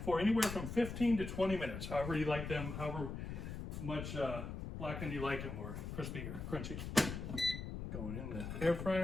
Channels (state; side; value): noise; left; rumble, 6 dB below the sound